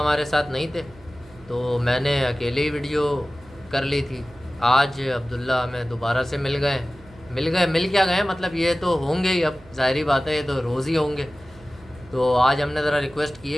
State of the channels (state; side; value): noise; right; hum, 24 dB below the sound